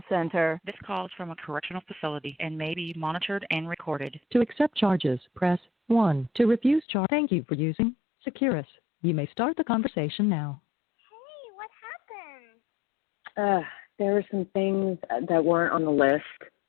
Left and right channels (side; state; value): right; drops out; at 6.9 s